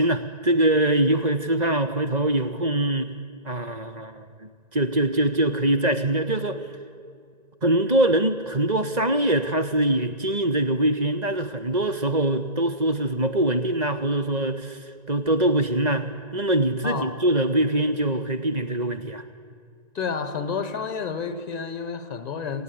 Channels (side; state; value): left; late; 1.9 ms